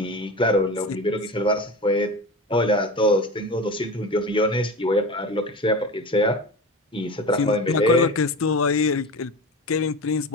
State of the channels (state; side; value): normal; both; correlation 0.29